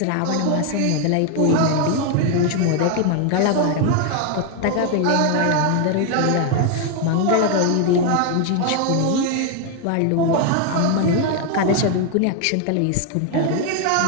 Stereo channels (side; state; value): both; different; correlation 0.01